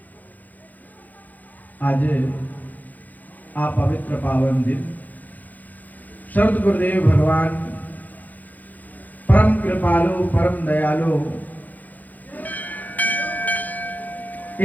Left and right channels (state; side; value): late; right; 0.082 ms